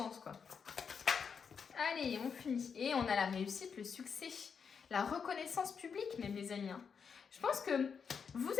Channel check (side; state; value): right; quieter; 6.3 dB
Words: quoi. Allez, on finit. Et on a la réussite, le succès, la reconnaissance publique même, les amis. Hein. Je pense que vous